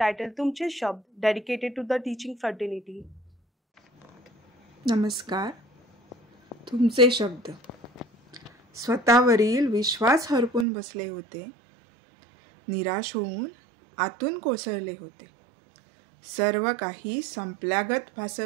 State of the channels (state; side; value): drops out; left; at 10.7 s